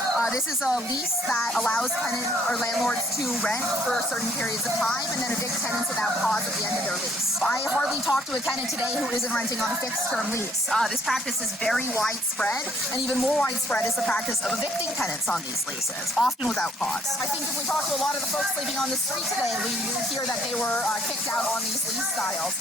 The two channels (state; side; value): normal; both; correlation 0.64